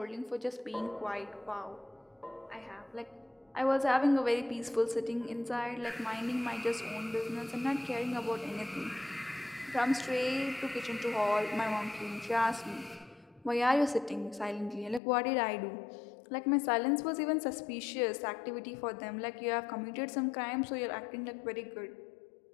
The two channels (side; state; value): right; drops out; at 15.0 s